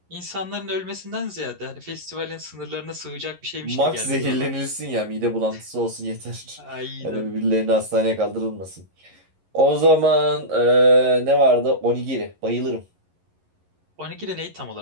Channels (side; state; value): left; late; 11 ms